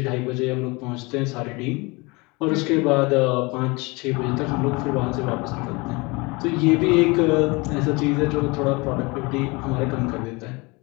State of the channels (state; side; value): quieter; right; 26.0 dB